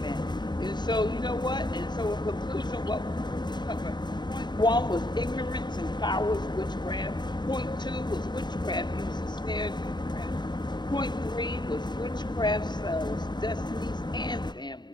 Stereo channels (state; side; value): late; right; 0.21 ms